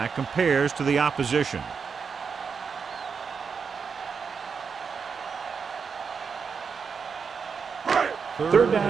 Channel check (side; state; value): left; quieter; 5.8 dB